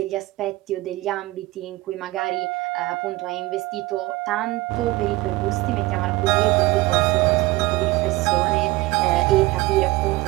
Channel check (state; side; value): quieter; left; 19.9 dB